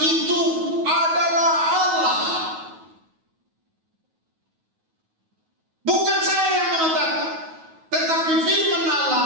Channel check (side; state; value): left; late; 9.3 ms